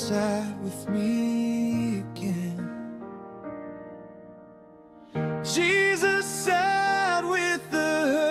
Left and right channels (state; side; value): identical; both; correlation 1.00